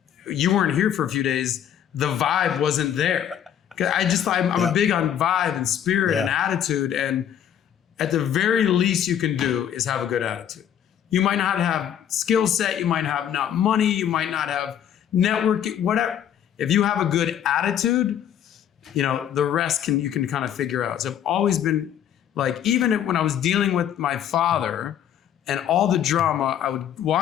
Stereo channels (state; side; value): quieter; right; 9.8 dB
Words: you weren't here for a few days. The vibe wasn't there. I'm a big on vibe and spirit and attitude. And at the very least you can do is have a good attitude. You might not have skill set. You might have not money. You might not have networking, whatever. If you have a good attitude, you know, the rest you can kind of figure out. So I've always been like, even when I was dealing with my father and all the drama, I would